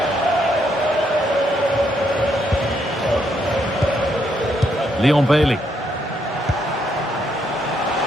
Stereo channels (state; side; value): normal; both; correlation 0.75